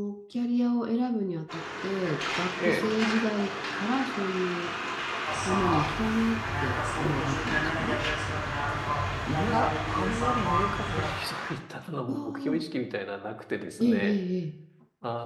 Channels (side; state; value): both; identical; correlation 1.00